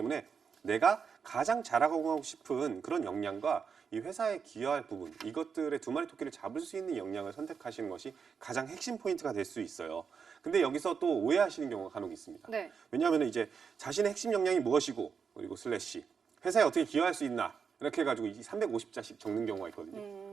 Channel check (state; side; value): quieter; left; 6.2 dB